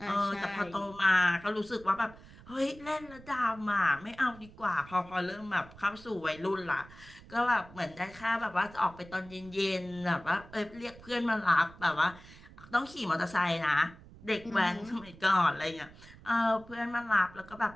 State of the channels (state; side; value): noise; right; rumble, 20 dB below the sound